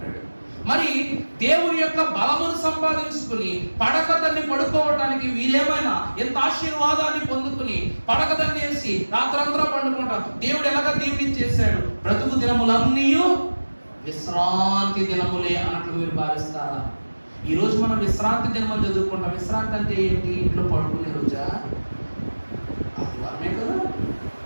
మరి దేవుని యొక్క బలమును సంపాదించుకుని పడకదాన్ని పడుకోవటానికి వీరేమైనా ఎంత ఆశీర్వాదాన్ని పొందుకుని పడకదాన్ని వేసి రాత్రంతా పండుకుంటాం. దేవుడు ఎలాగ దీవెనిచ్చేశాడు? బ్రతుకు దినములన్నీ విశ్రాంతి దినములే అన్నట్లు మీరు భావిస్తారా? ఈ రోజు మనం విశ్రాంతి దినమని చదువుకుంటాం. విశ్రాంతి అంటే ఏంటి? ఇంట్లో పడుకునే రోజా? ఆదివారమే కదా.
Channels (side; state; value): both; inverted; correlation -1.00